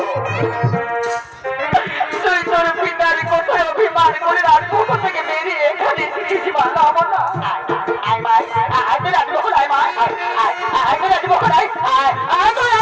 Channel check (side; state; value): both; identical; correlation 1.00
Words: তুই তোর পিতার কোথায় অভিমান করে রাজমহল থেকে বেরিয়ে এখানে এসেছিস মা।